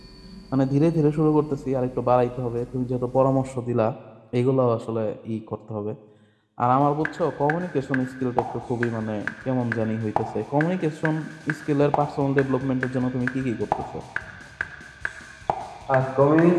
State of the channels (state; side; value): identical; both; correlation 1.00